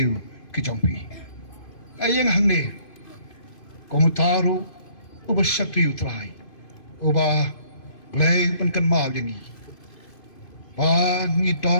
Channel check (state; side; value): late; right; 2.5 ms